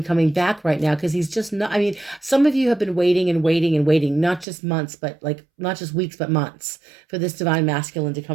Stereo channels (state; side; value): drops out; left; at 4.5 s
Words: coming back right now, because he's just not. I mean, some of you have been waiting and waiting and waiting, not just months, but not just weeks, but months for this divine masculine to